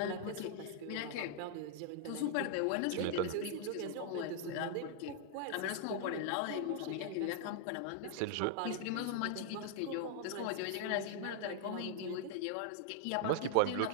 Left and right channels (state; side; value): different; both; correlation -0.01